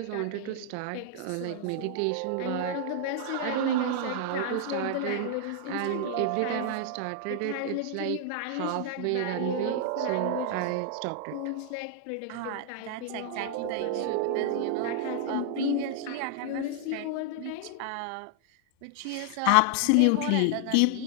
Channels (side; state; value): both; different; correlation 0.00